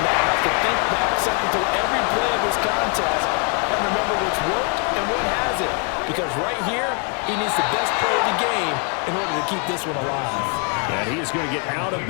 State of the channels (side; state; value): right; quieter; 38.6 dB